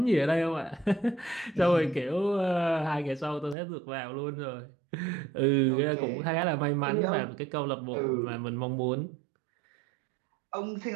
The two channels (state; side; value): drops out; left; at 3.6 s